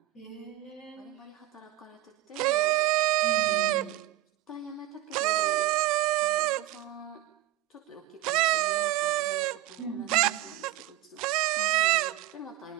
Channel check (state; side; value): quieter; left; 15.2 dB